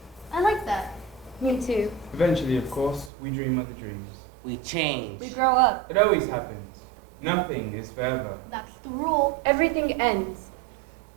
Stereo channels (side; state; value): left; drops out; at 3.1 s